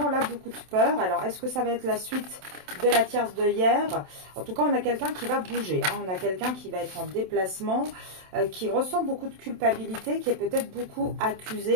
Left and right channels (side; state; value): left; late; 27 ms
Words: là beaucoup de peur. Alors, est-ce que ça va être la suite de la tierce de hier? En tout cas, on a quelqu'un qui va bouger, hein. On a quelqu'un qui va être en déplacement, qui ressent beaucoup de culpabilité, qui est peut-être beaucoup